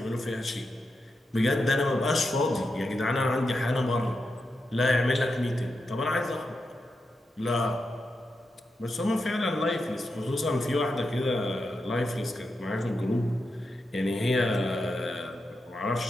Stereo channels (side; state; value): both; normal; correlation 0.87